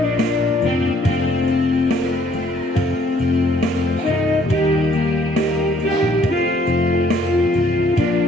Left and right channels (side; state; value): both; normal; correlation 0.63